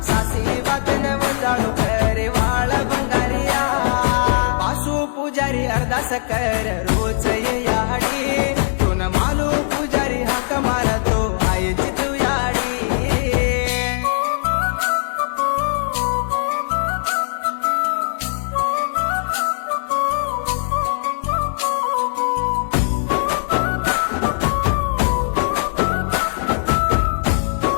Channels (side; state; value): right; silent; digital silence